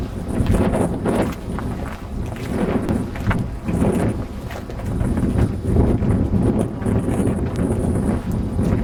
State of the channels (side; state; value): both; identical; correlation 1.00